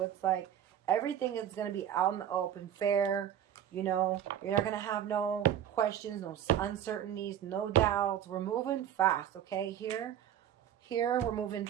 it's like everything is going to be out in the open, fair. You know, you're not going to have no questions, no uncertainties, no doubts. We're moving fast, okay? Here we're moving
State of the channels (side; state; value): left; quieter; 10.1 dB